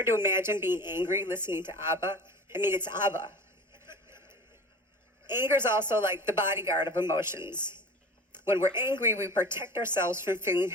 to imagine being angry listening to ABBA. I mean, it's ABBA. Anger is also like the bodyguard of emotions. When we're angry, we protect ourselves from feeling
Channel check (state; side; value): normal; both; correlation 0.38